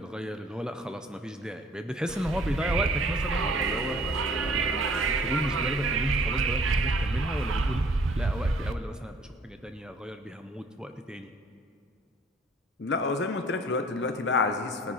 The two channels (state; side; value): normal; both; correlation 0.54